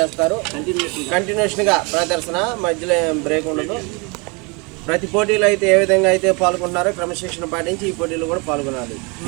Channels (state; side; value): quieter; left; 30.2 dB